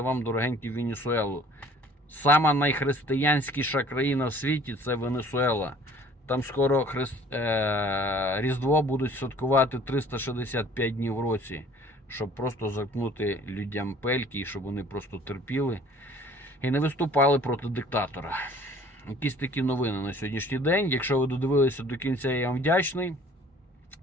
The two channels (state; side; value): normal; both; correlation 0.52